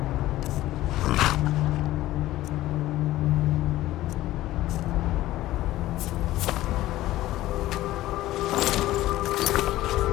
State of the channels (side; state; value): right; quieter; 15.6 dB